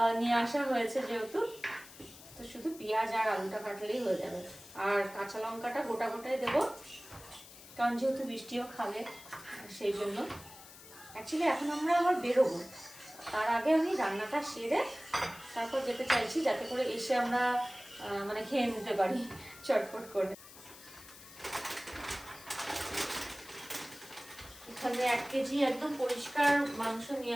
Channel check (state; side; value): noise; left; hiss, 18 dB below the sound